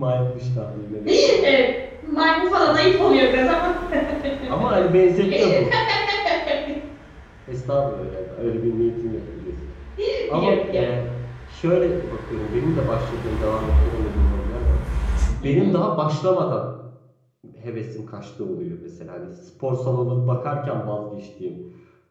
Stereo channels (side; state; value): both; identical; correlation 1.00